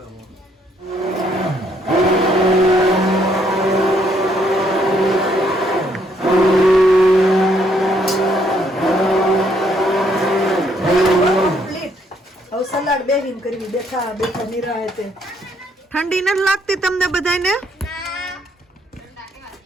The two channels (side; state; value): both; normal; correlation 0.70